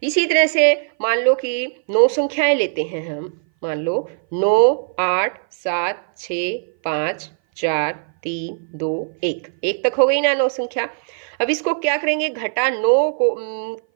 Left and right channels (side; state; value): left; silent; 59 dB below the other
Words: इसी तरह से मान लो कि 9 संख्याएं लेते हैं हम, मान लो 9 8 7 6 5 4 3 2 1 तक हो गई ना 9 संख्या। अब इसको क्या करेंगे, घटा 9 को